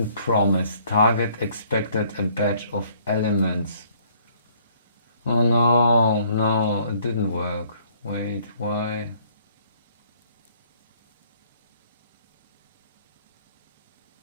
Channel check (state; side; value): inverted; both; correlation -0.62